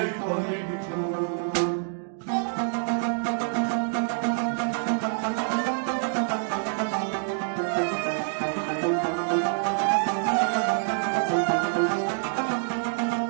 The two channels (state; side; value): silent; left; digital silence